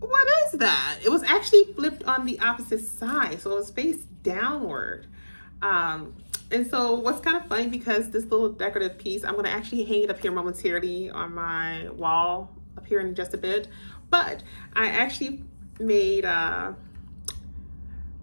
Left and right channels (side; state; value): both; inverted; correlation -1.00